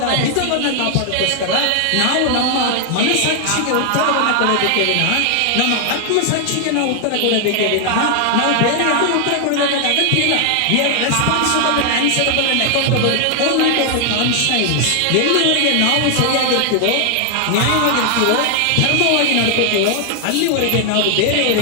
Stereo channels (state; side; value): different; both; correlation 0.00